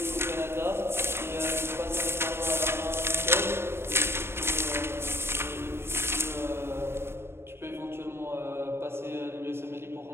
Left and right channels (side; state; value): left; late; 0.12 ms